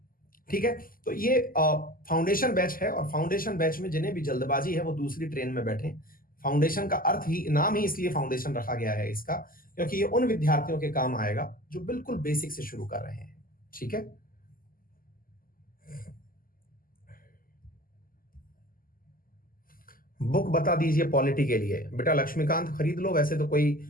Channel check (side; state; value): right; late; 0.42 ms